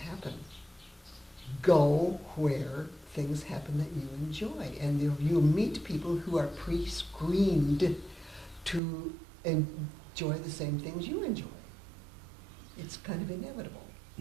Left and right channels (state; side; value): drops out; left; at 8.8 s